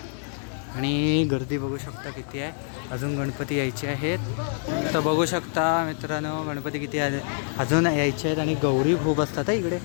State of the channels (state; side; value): silent; right; 61 dB below the other